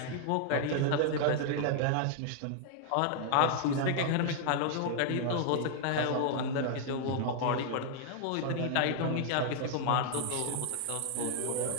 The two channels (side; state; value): both; different; correlation 0.00